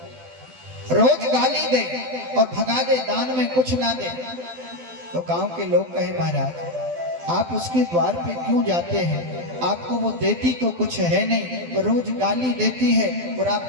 रोज गाली दे और भगा दे, दान में कुछ ना दे। तो गांव के लोग कहे महाराज आप उसके द्वार पे क्यों जाते हैं, आपको वो देती तो कुछ है नहीं, रोज गाली देती है और आप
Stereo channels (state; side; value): late; left; 12 ms